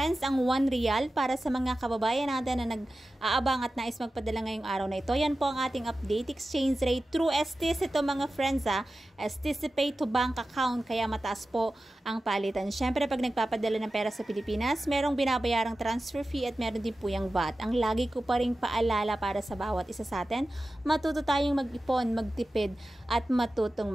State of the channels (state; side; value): normal; both; correlation 0.94